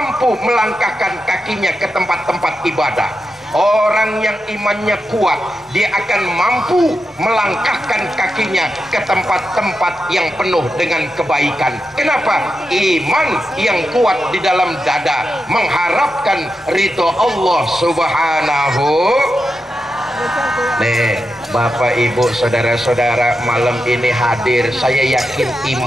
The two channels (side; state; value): both; normal; correlation 0.88